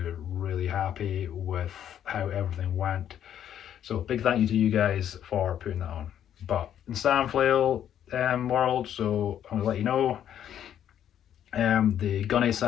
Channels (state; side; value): quieter; right; 10.1 dB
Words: really happy with how everything went. So big thank you to you guys for putting that on. But in Sandflail world, so I'm gonna let you know, the gunny